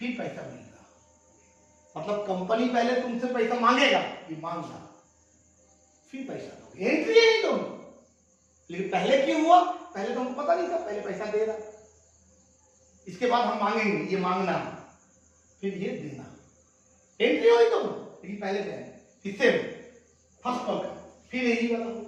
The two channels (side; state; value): both; identical; correlation 1.00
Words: पैसा मिलेगा, मतलब कंपनी पहले तुमसे पैसा मांगेगा, ये मांग डालो, फिर पैसा दोगे, एंट्री है दोनों, लेकिन पहले क्यों हुआ, पहले तो हमको पता नहीं था, पहले पैसा दे रहा, इसके बाद हम मांगेंगे, ये मांगना फिर ये देना, एंट्री हुई दोनों, लेकिन पहले देना, इससे फर्स्ट कॉल का, फिर यही वाला होगा,